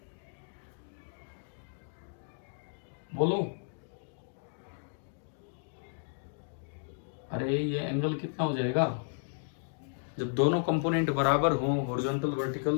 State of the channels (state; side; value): silent; right; digital silence